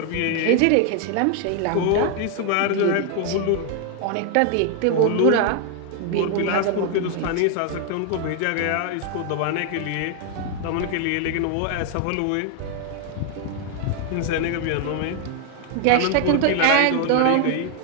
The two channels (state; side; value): different; both; correlation 0.00